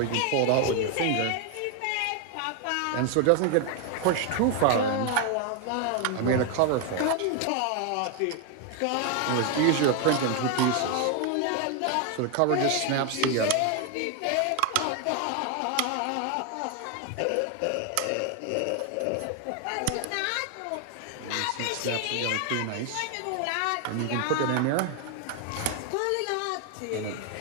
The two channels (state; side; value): different; both; correlation 0.01